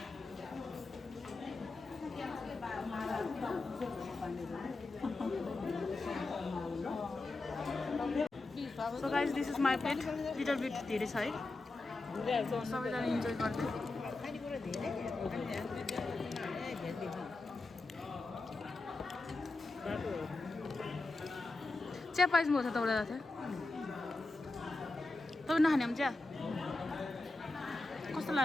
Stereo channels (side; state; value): right; quieter; 3.2 dB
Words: So guys, this is my plate. Little bit धेरै छ है सबैजना इन्जोय गर्दै खानेकुरा धेरै चिया पाइसक्नु छ तपाईँलाई थियो तपाईँ नखाने पनि चिया कस्तो